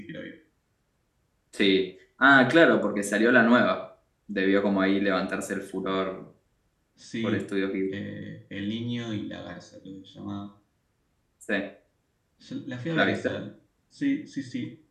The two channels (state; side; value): identical; both; correlation 1.00